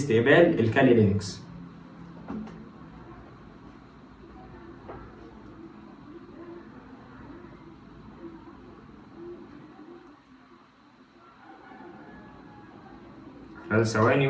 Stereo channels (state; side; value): identical; both; correlation 1.00